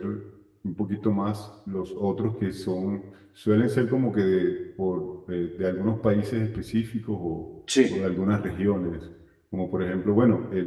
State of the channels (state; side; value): identical; both; correlation 1.00